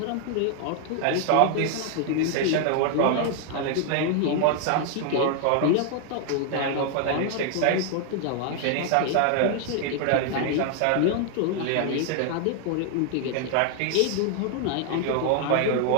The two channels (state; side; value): different; both; correlation 0.00